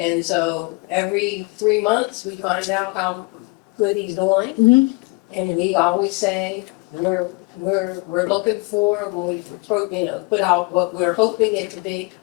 so every 3 months, we find out how good he's doing. And we always say, we're looking for, when we put out what we're hoping it to be,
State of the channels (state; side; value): quieter; right; 27.2 dB